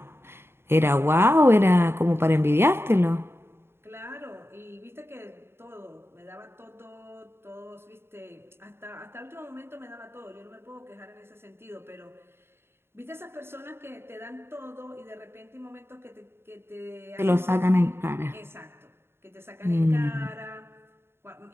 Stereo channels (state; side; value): late; left; 0.11 ms